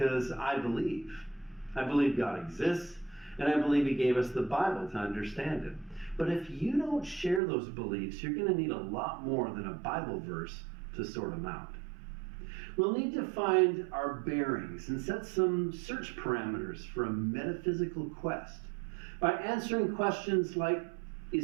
I believe. I believe God exists, and I believe He gave us the Bible to understand it. But if you don't share those beliefs, you're going to need a lot more than a Bible verse to sort them out. We'll need to find our bearings and set some search parameters for a metaphysical quest by answering questions like,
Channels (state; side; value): drops out; left; at 7.4 s